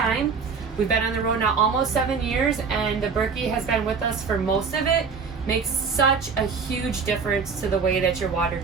We've been on the road now almost 7 years, and the Berkey has been with us for most of it. Makes such a huge difference to the way that your water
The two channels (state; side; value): quieter; left; 5.4 dB